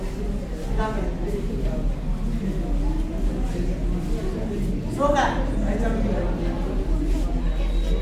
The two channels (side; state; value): both; identical; correlation 1.00